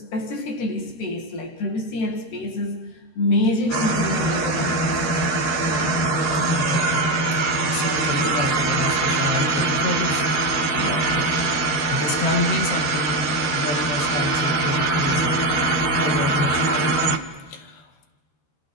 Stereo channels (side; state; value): right; late; 13 ms